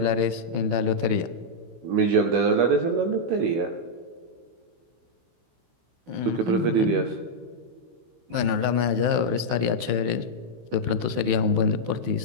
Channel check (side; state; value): left; late; 16 ms